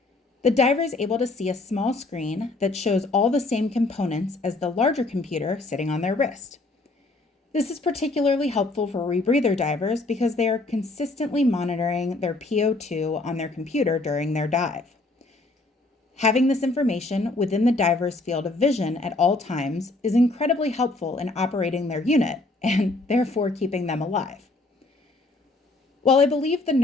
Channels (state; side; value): quieter; right; 3.1 dB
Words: The diver is able to see a small screen that shows all the same components as the larger computer sitting on their wrist. This is particularly helpful for rebreather divers because they are consistently monitoring their PO2 on their computer during their dive. Having this information within the diver's field of vision at all times is incredibly helpful in operating their unit and therefore keeping them alive. While I believe the